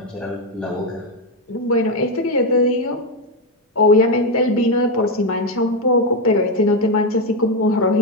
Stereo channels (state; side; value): normal; both; correlation 0.07